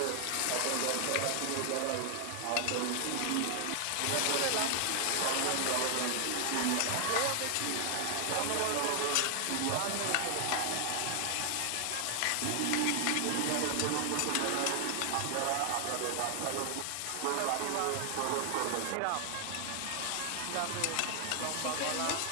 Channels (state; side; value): different; both; correlation 0.00